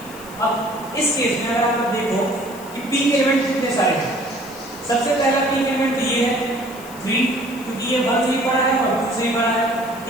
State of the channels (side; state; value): left; noise; hiss, 19 dB below the sound